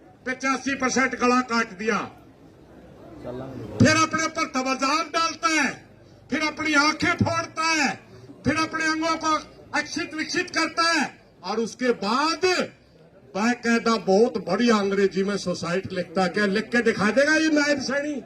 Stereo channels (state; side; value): identical; both; correlation 1.00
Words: 85% गला काट दिया, फिर अपने पर तवज्जो डालता है, फिर अपनी आंखें फोड़ता है, फिर अपने अंगों को अक्षित विक्षित करता है, और उसके बाद बाकायदा बहुत बड़ी अंग्रेजी में सुसाइड लिखता है। क्या लिख के दिखा देगा ये नायब सैनी?